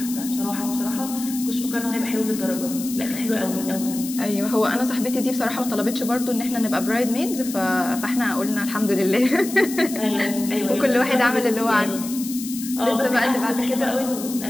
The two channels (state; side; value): noise; left; hiss, 10 dB below the sound